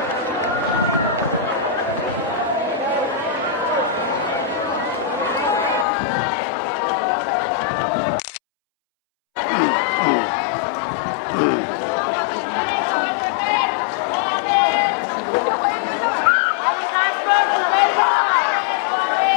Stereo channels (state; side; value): drops out; right; at 5.9 s